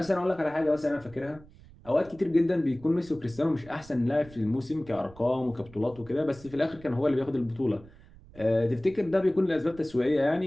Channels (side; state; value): right; noise; rumble, 22 dB below the sound